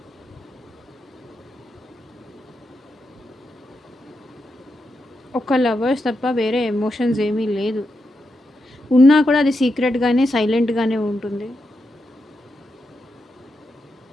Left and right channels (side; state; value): both; normal; correlation 0.86